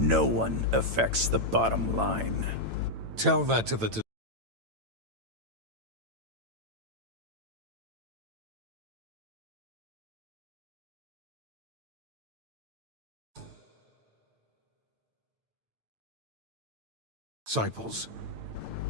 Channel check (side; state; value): left; late; 9.0 ms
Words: one affects the bottom line. Tell that to the... disciples.